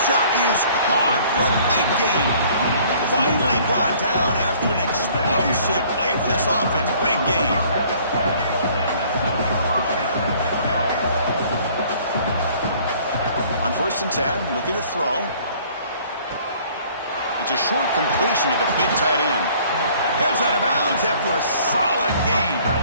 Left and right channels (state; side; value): inverted; both; correlation -0.56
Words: shot is caught for a big gain. Finally brought down after an explosive play for this offense. Big gain. On 1st and 10, looking to throw. It's a short completion to the big tight end. Heads out of bounds after a solid gain.